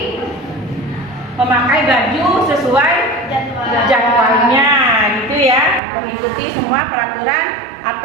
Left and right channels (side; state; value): left; drops out; at 5.8 s